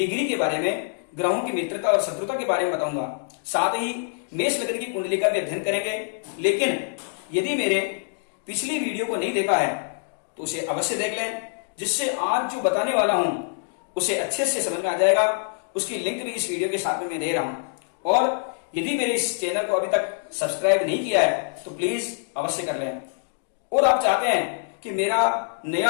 के बारे में, ग्रहों की मित्रता और शत्रुता के बारे में बताऊंगा। साथ ही मेष लग्न की कुंडली का भी अध्ययन करेंगे। लेकिन यदि मेरे पिछली वीडियो को नहीं देखा है तो उसे अवश्य देख लें, जिससे आज जो बताने वाला हूं उसे अच्छे से समझ में आ जाएगा। उसकी लिंक भी इस वीडियो के साथ में मैं दे रहा हूं। और यदि मेरे इस चैनल को अभी तक सब्सक्राइब नहीं किया है तो प्लीज अवश्य कर लें। और आप चाहते हैं कि मेरा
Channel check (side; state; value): right; silent; digital silence